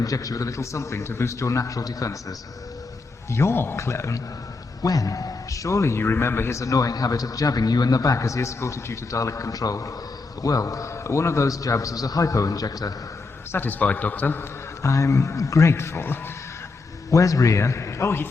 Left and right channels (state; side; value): quieter; right; 3.9 dB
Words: you with a little something to boost your natural defenses. Your clone? When? Surely you remember his annoying habit of jabbing you in the back as he escorted you to Dalek control. Well, one of those jabs was a hypo-injector. Satisfied, Doctor? I'm grateful. Where's Rhea? Oh, he